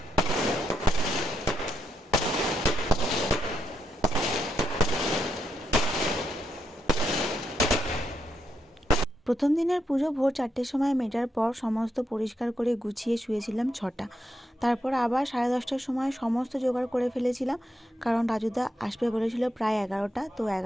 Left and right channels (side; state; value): both; normal; correlation 0.81